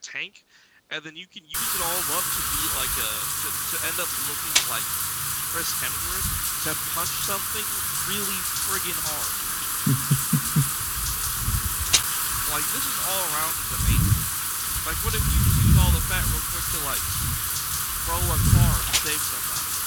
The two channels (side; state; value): both; identical; correlation 1.00